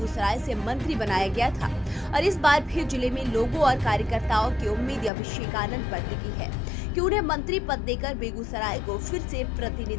से मंत्री बनाया गया था और इस बार फिर जिले में लोगों और कार्यकर्ताओं की उम्मीद अभिषेक आनंद पर टिकी है कि उन्हें मंत्री पद देकर बेगूसराय को फिर से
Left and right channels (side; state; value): right; drops out; at 5.1 s